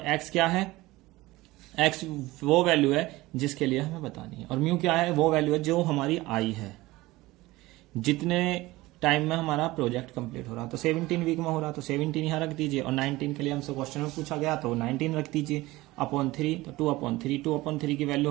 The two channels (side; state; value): left; quieter; 19.3 dB